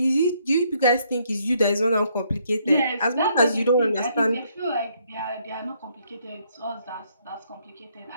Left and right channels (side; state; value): both; inverted; correlation -0.70